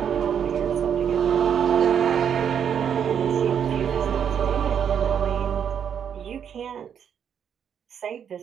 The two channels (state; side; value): quieter; left; 8.2 dB